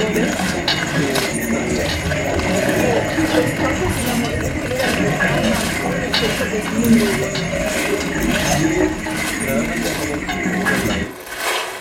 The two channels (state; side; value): identical; both; correlation 1.00